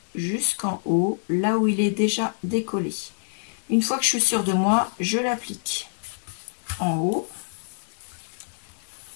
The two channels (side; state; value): right; silent; digital silence